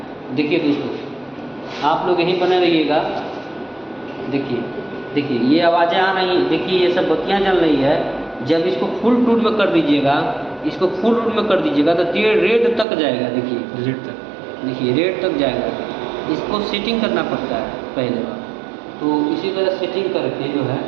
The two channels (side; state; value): left; drops out; at 12.9 s